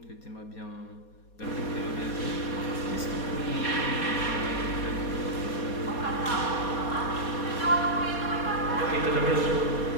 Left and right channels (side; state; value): right; late; 4.2 ms